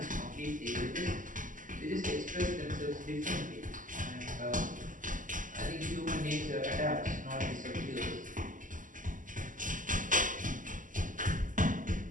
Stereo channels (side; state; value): left; late; 0.38 ms